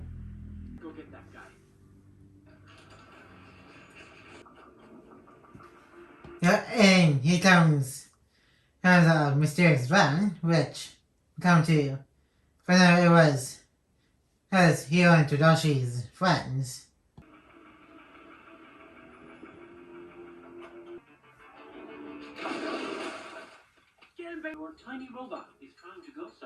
Go get that guy. And here comes a mysterious van, which come to find out it was Hiro and Todoshi's friends. Get him back. Your tiny robot is trying to go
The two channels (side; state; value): both; identical; correlation 1.00